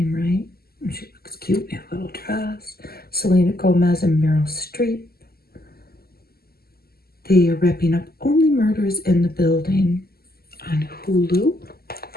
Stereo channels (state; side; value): late; right; 0.45 ms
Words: right. She looks cute in a little dress. Selena Gomez and Meryl Streep. They are wrapping up Only Murders in the Building on Hulu.